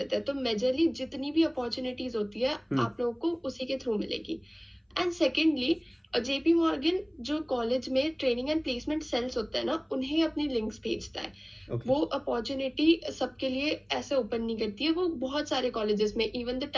हैं। तो मेजरली जितनी भी अपॉर्चुनिटीज होती है आप लोगों को उसी के थ्रू मिलेगी। एंड सेकेंडली जेपी मॉर्गन जो कॉलेज में ट्रेनिंग एंड प्लेसमेंट सेल्स होता है ना, उन्हें अपनी लिंक्स भेजता है। वो अपॉर्चुनिटी सबके लिए ऐसे ओपन नहीं करती है, वो बहुत सारे कॉलेजेस में, इवन द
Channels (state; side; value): identical; both; correlation 1.00